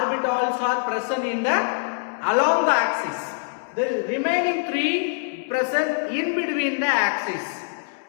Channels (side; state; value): right; silent; digital silence